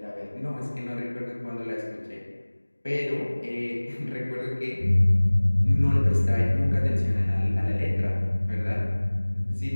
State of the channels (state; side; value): inverted; both; correlation -1.00